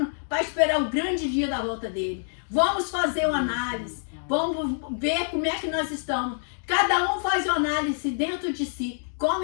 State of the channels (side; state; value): right; silent; digital silence